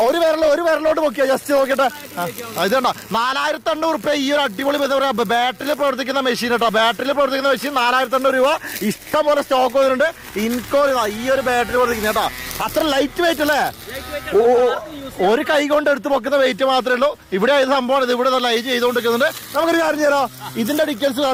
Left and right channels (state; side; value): identical; both; correlation 1.00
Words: ഒരു വിരലോട്ട് നോക്കിയാ. ജസ്റ്റ് നോക്കിട്ടെ, ഇതുണ്ടോ 4800 രൂപ ഈ ഒരു അടിപൊളി ബാറ്ററിയിൽ പ്രവർത്തിക്കുന്ന മെഷീൻ കേട്ടോ. ബാറ്ററിയിൽ പ്രവർത്തിക്കുന്ന മെഷീൻ 4800 രൂപ. ഇഷ്ടം പോലെ സ്റ്റോക്ക് വന്നിട്ടുണ്ട്. ഇൻകോ ഈ ഒരു ബാറ്ററി പ്രവർത്തിക്കുന്ന കേട്ടോ. അത്ര ലൈറ്റ് വെയിറ്റ് അല്ലേ? ഒരു കൈ കൊണ്ട് എടുത്ത് പൊക്കുന്ന വെയിറ്റ് മാത്രമേ ഉള്ളൂ. ഇവിടെ ഇത് സംഭവം ഇത് ഇവിടെ ലൈറ്റ് ചെയ്തുകൊണ്ടിരിക്കുന്നുണ്ട്. നമുക്കൊരു കാര്യം ചെയ്യാം, ഇതിന്റെ ഡീറ്റെയിൽസ്